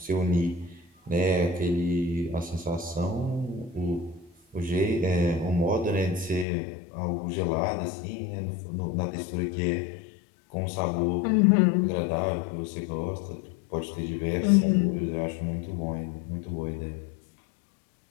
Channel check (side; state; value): right; drops out; at 6.5 s